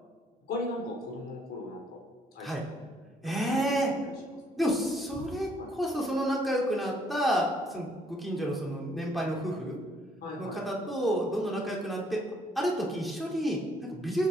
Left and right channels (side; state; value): both; normal; correlation 0.67